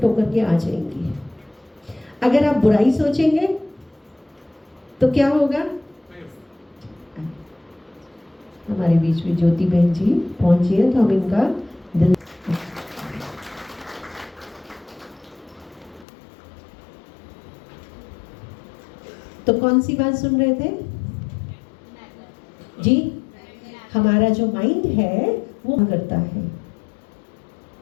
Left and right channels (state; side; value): drops out; right; at 16.1 s